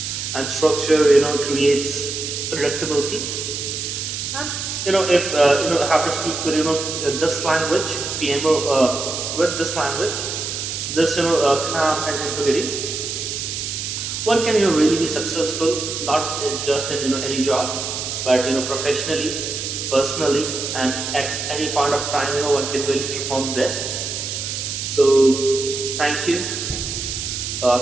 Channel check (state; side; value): noise; right; hiss, 4 dB below the sound